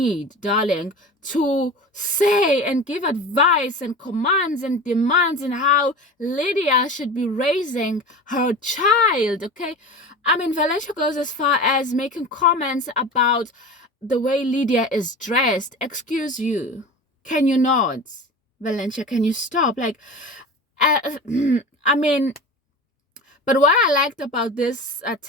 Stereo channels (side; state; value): both; normal; correlation 0.32